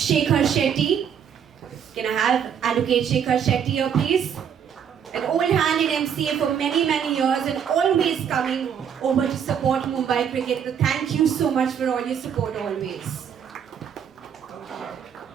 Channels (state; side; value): quieter; left; 8.1 dB